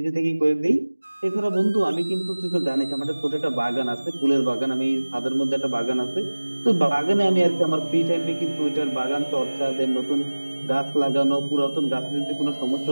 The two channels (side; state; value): both; inverted; correlation -1.00